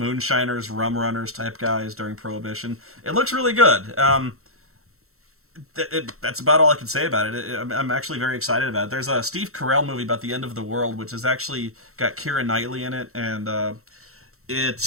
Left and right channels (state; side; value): late; left; 0.63 ms